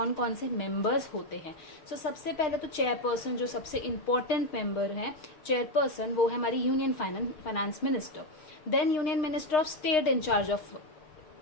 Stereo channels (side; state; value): right; late; 6.5 ms